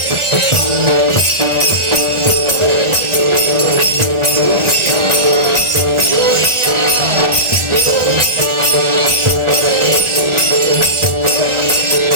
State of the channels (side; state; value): left; late; 1.4 ms